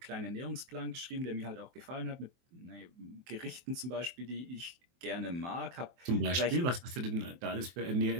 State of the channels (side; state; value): left; late; 23 ms